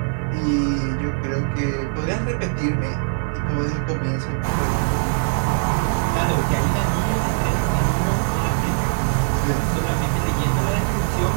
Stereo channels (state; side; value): silent; left; digital silence